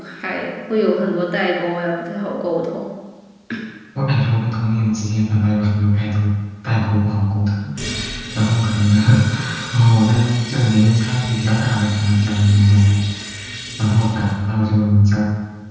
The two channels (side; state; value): both; identical; correlation 1.00